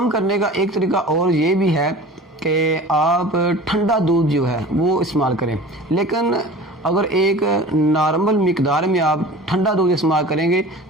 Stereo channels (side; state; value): both; normal; correlation 0.40